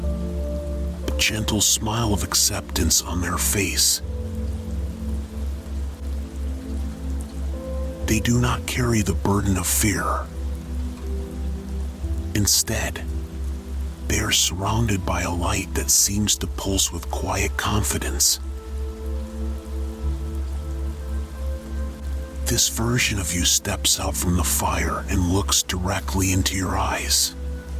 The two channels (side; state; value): both; identical; correlation 1.00